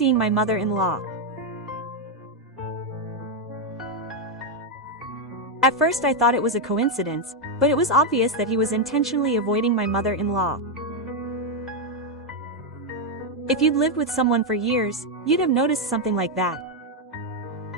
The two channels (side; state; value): both; normal; correlation 0.03